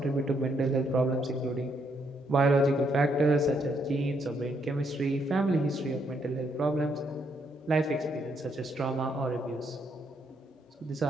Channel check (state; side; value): normal; both; correlation 0.74